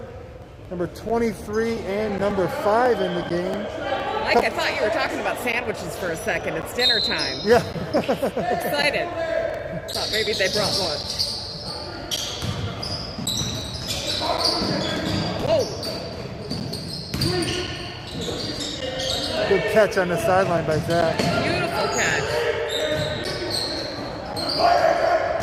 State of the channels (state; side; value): identical; both; correlation 1.00